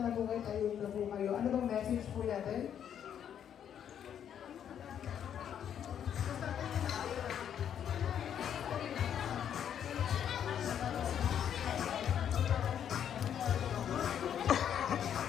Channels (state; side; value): quieter; right; 9.1 dB